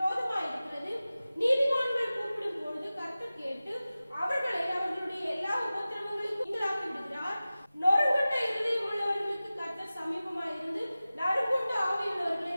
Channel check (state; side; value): inverted; both; correlation -0.96